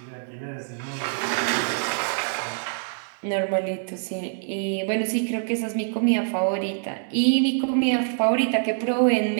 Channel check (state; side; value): silent; left; digital silence